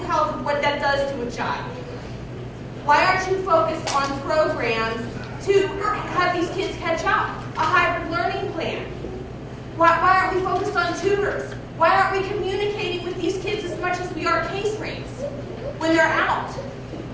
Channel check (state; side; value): identical; both; correlation 1.00